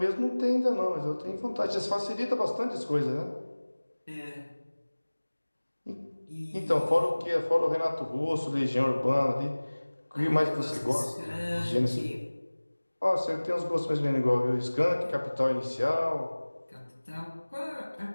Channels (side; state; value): both; inverted; correlation -1.00